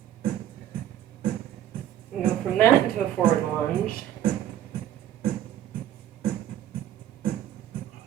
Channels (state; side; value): quieter; left; 11.3 dB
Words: And go from that into a forward lunge.